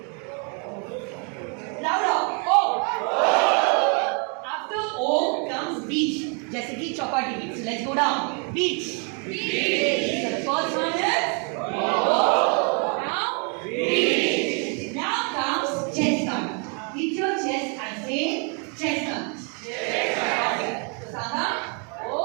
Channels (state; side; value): quieter; left; 37.4 dB